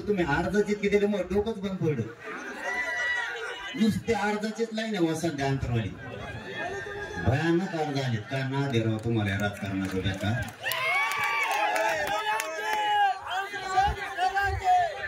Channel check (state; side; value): identical; both; correlation 1.00